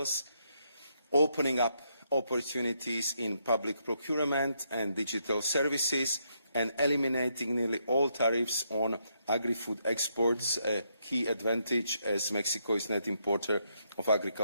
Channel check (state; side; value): inverted; both; correlation -0.77